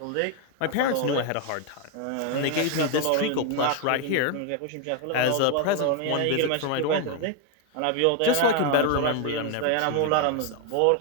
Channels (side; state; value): both; different; correlation 0.01